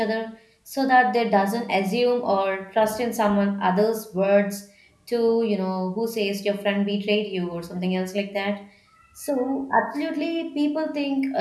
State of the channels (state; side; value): identical; both; correlation 1.00